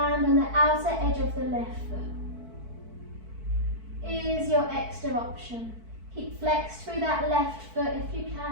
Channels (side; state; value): left; late; 4.5 ms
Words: on the outer edge of the left foot. Is your extra option. Keep flexed through that left foot if you